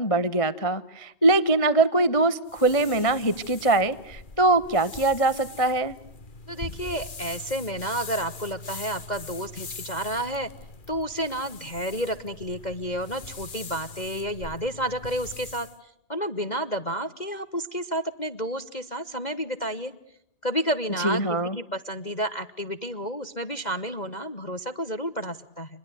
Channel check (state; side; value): late; right; 2.3 ms